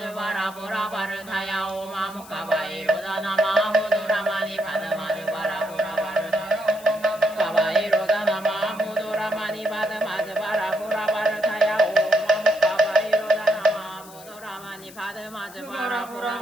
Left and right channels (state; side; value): noise; left; hiss, 19 dB below the sound